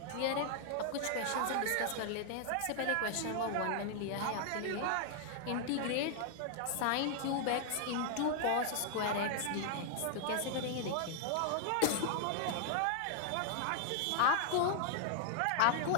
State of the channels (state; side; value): different; both; correlation 0.00